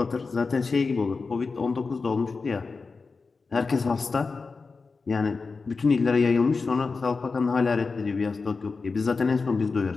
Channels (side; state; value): right; quieter; 4.4 dB